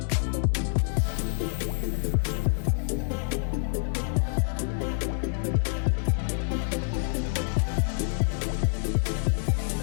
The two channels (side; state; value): right; silent; digital silence